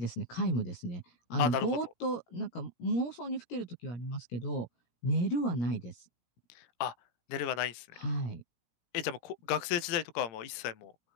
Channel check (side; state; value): right; late; 17 ms